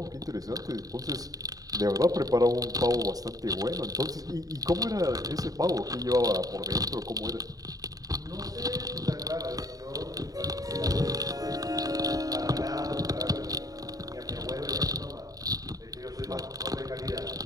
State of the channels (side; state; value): left; late; 0.18 ms